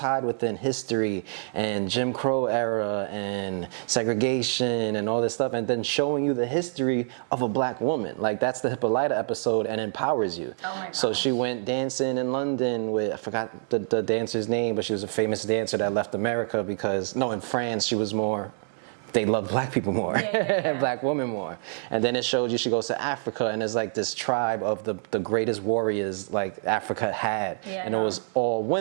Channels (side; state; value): left; silent; 60 dB below the other